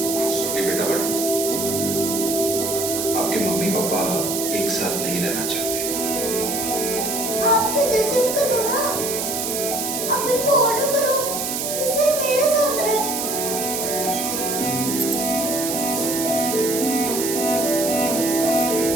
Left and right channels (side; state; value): right; noise; hiss, 2 dB below the sound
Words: सॉरी बेटा, बट आपके मम्मी पापा एक साथ नहीं रहना चाहते। आप तो जैसे भी करो ना, आप इनको ऑर्डर करो जिससे मेरे साथ रहे।